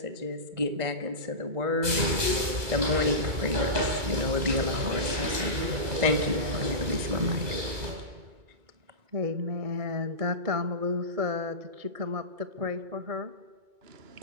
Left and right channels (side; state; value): left; late; 2.2 ms